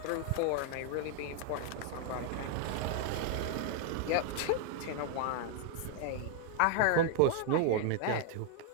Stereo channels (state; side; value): different; both; correlation 0.00